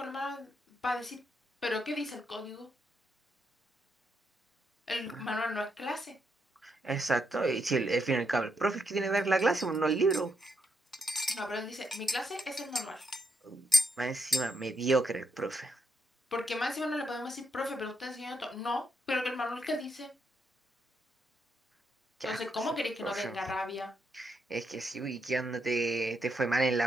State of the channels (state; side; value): normal; both; correlation 0.79